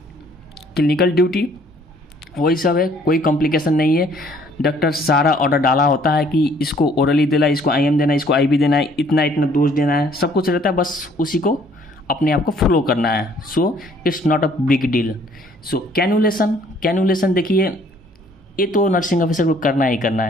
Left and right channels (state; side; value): normal; both; correlation 0.60